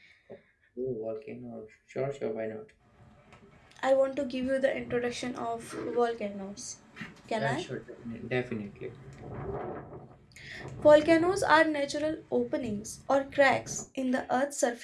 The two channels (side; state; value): both; identical; correlation 1.00